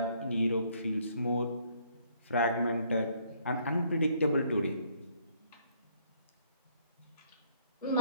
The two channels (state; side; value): inverted; both; correlation -0.67